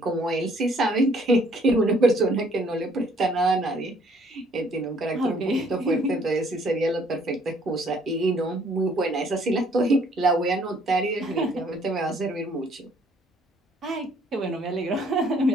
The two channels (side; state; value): both; normal; correlation 0.62